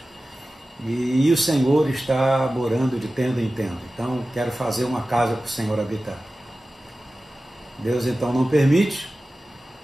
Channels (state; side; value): normal; both; correlation 0.95